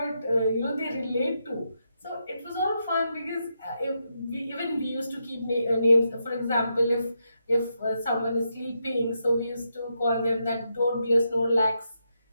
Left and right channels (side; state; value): both; inverted; correlation -0.83